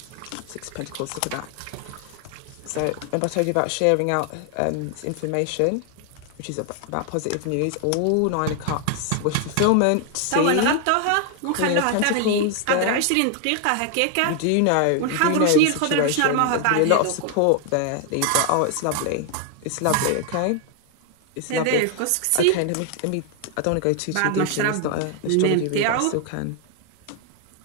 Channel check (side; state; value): both; different; correlation 0.00